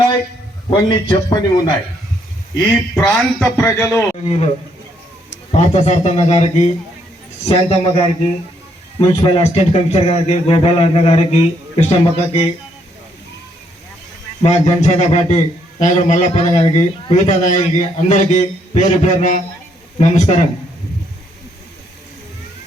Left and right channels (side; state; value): both; normal; correlation 0.72